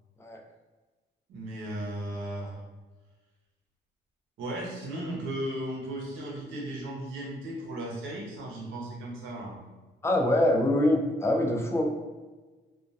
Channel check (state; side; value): normal; both; correlation 0.71